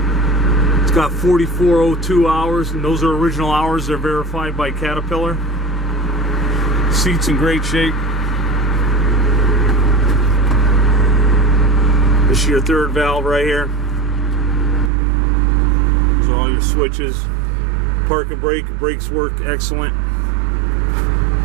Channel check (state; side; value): drops out; left; at 14.9 s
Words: It's got 4402 hours, and those are original hours. They're verified by Caterpillar. Seat's in great shape. This is your third valve right here. Those are all your switches. Park and brake, brakes work excellent.